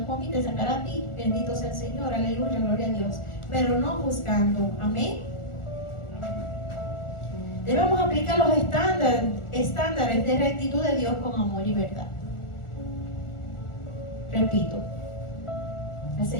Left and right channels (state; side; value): late; right; 1.4 ms